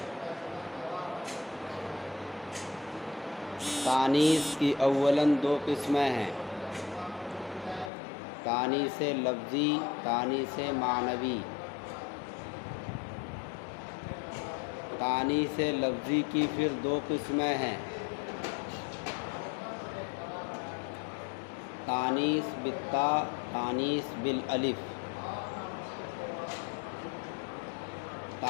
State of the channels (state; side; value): drops out; right; at 7.9 s